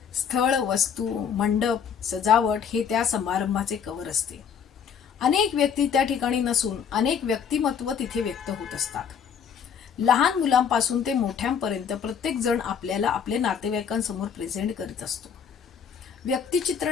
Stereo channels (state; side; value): quieter; right; 7.4 dB